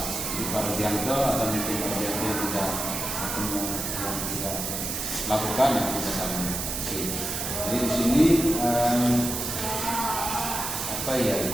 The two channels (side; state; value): right; noise; hiss, 3 dB below the sound